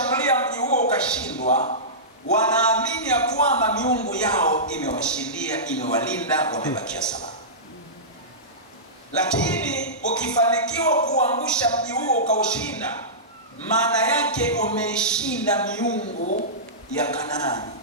mji huo ukashindwa, wanaamini ya kwamba miungu yao imewashindia, imewalinda, wamebakia salama. Lakini ukifanikiwa kuangusha mji huo ukaushinda, maana yake umeishinda miungu ya Kanaani.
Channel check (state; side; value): normal; both; correlation -0.18